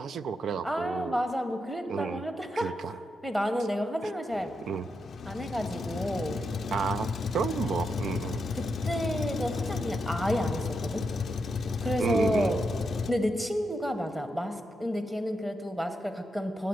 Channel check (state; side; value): normal; both; correlation 0.84